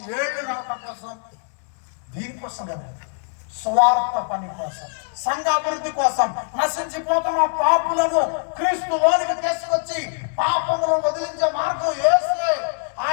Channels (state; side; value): silent; right; digital silence